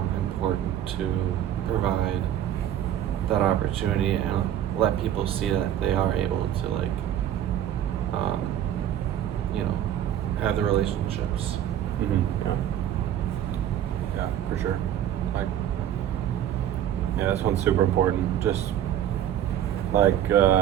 important to provide that opportunity and let people see that they are able to like have the relationships. Mm-hmm. Yeah. Yeah, for sure. Like, yeah, this one's super important. Just like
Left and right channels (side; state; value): left; quieter; 10.9 dB